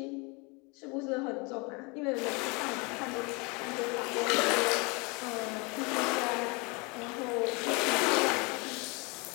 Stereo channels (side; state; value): right; quieter; 29.3 dB